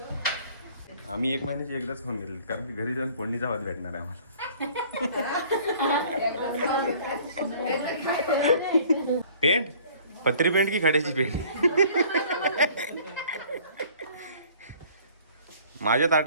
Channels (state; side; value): inverted; both; correlation -0.53